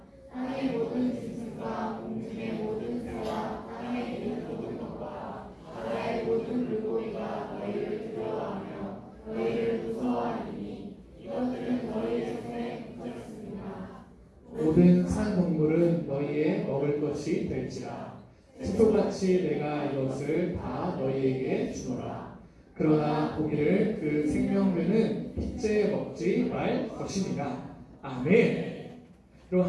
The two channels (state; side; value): identical; both; correlation 1.00